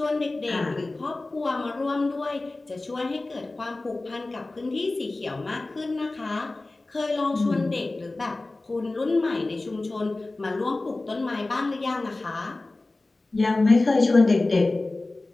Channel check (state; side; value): quieter; right; 3.1 dB